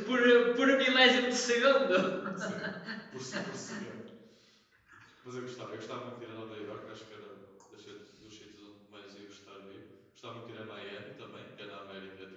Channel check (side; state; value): both; identical; correlation 1.00